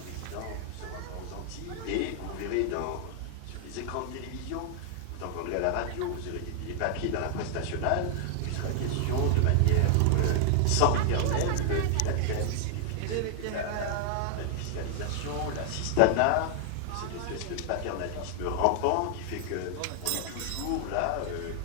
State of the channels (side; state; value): both; different; correlation 0.00